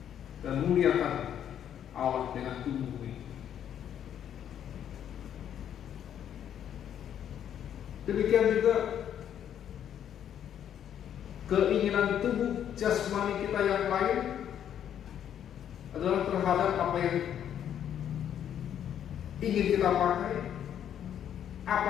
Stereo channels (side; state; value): right; quieter; 9.7 dB